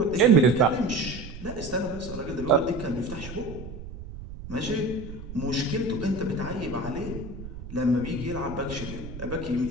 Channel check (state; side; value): noise; right; rumble, 12 dB below the sound